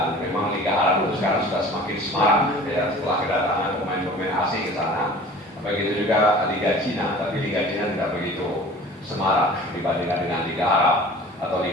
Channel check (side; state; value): both; normal; correlation 0.44